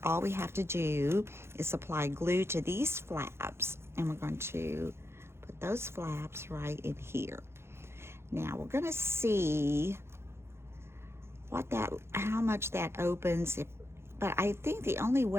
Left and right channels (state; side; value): late; left; 0.12 ms